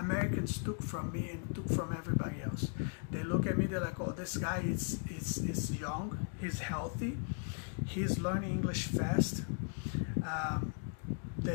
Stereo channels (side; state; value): right; silent; 53 dB below the other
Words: took from me and took from everybody else. They look at me, they're like, oh, this guy is young, he's healthy, he's learning English fast.